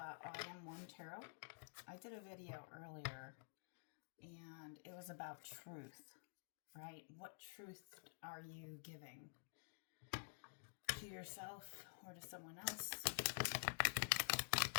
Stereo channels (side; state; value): right; silent; digital silence